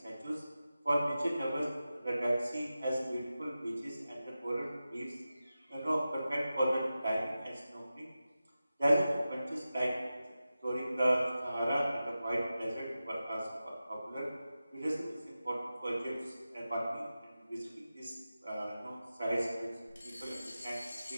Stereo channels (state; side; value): inverted; both; correlation -0.94